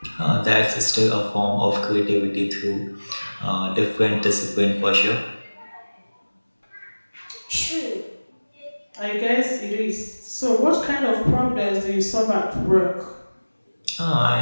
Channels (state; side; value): inverted; both; correlation -1.00